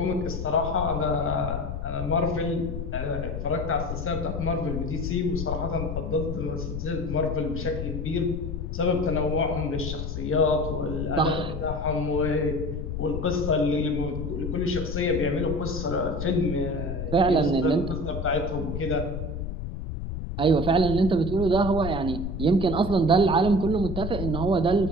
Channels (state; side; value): noise; left; rumble, 5 dB below the sound